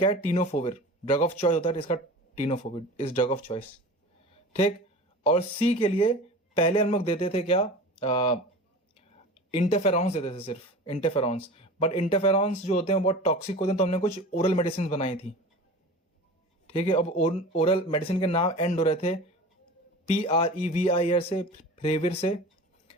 है, टीनोफोविर ड्रग ऑफ चॉइस होता है, इसका tenofovir is drug of choice, ठीक। और सी के लिए पहले हम लोग देते थे क्या, इंटरफेरॉन्स देते थे, सिर्फ इंटरफेरॉन्स। बट इंटरफेरॉन्स जो होते हैं बहुत टॉक्सिक होते हैं, तो हमने कुछ ओरल मेडिसिन बनाई थी, ठीक है। अब ओरल मेडिसिन के नाम एंड हो रहे थे PREVIR से, फ्रेविर से,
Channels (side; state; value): both; normal; correlation 0.35